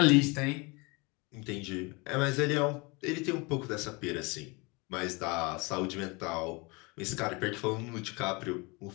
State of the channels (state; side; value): quieter; right; 27.7 dB